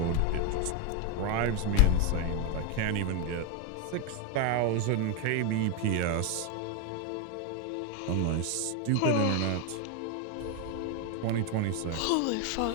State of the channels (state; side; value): different; both; correlation 0.01